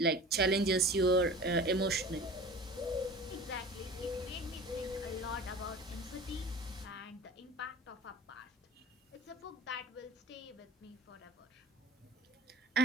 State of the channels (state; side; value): normal; both; correlation 0.40